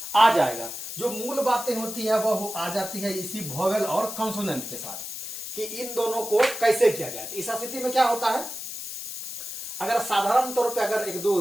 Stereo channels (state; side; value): noise; left; hiss, 7 dB below the sound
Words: आ जाएगा। जो मूल बातें होती है वह आ जाती है इसी वोवेल और कंसोनेंट के साथ, कि इन दोनों को कैसे किया जाए। इस स्थिति में क्या होता है, अगर साधारण तौर पे अगर एक दो